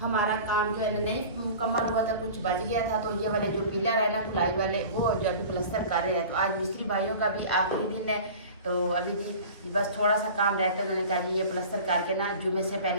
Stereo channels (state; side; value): inverted; both; correlation -0.39